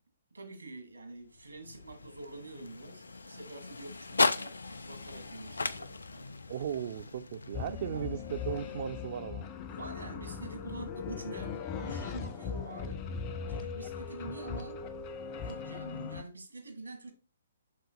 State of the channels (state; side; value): inverted; both; correlation -0.56